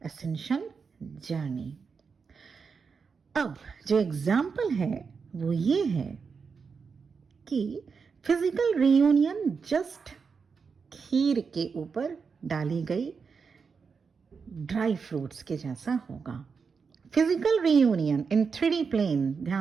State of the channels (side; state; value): left; quieter; 5.5 dB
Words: ascension journey. अब जो एग्जाम्पल है वो ये है कि फिजिकल रियूनियन जस्ट खीर के ऊपर डाली गई ड्राई फ्रूट्स के जैसा होगा। फिजिकल रियूनियन इन 3D प्लेन,